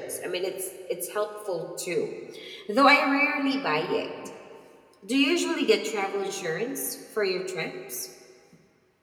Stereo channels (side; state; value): both; identical; correlation 1.00